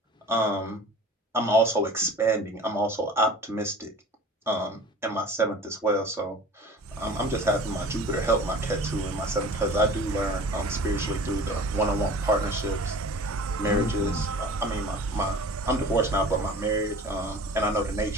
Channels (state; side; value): normal; both; correlation 0.42